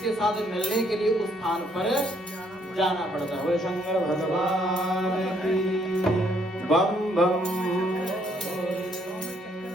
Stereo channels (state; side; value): normal; both; correlation 0.68